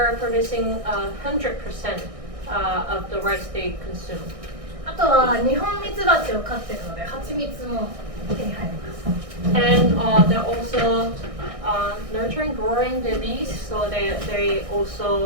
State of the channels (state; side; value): late; left; 1.6 ms